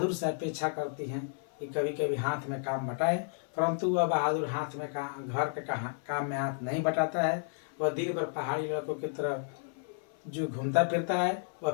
से अपेक्षा करती हैं कि कभी कभी हाथ में काम बटाए, परंतु वह बहादुर हाथ में घर के काम में हाथ नहीं बटाता है। वह दिन भर पहाड़ी लड़कों की तरह जो घूमता फिरता है, वह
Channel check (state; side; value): silent; right; 56 dB below the other